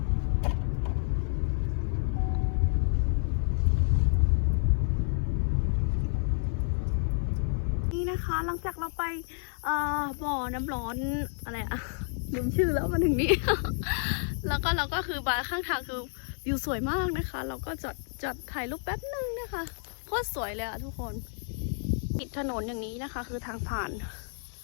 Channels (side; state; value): right; silent; 56 dB below the other